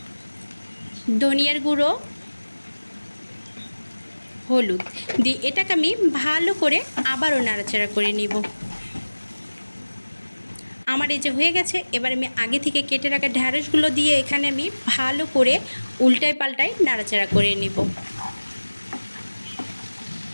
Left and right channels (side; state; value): both; inverted; correlation -1.00